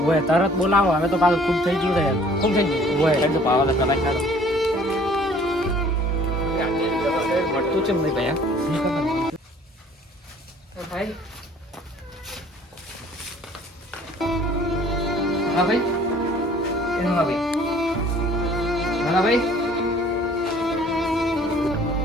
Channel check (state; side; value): normal; both; correlation 0.54